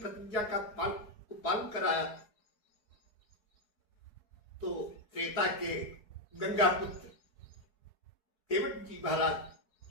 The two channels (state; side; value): late; right; 4.7 ms